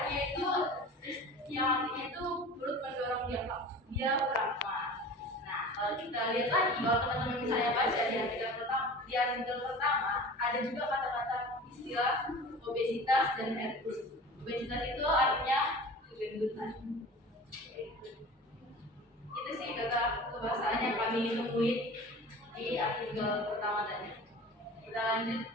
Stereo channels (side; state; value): both; normal; correlation 0.38